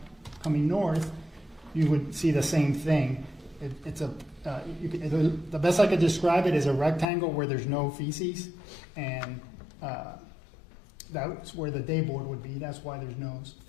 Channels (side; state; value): right; drops out; at 7.1 s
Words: coming north, you would see the same thing. The best I could describe it is a rectangle where there's no feces, and that's where the day board would be. That's why there's no